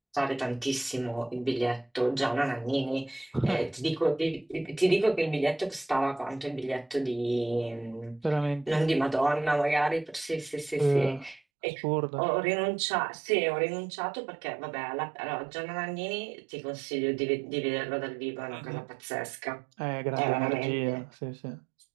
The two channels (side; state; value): left; drops out; at 11.4 s